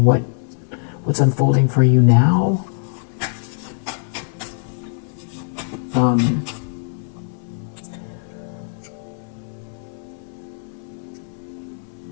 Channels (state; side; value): silent; right; digital silence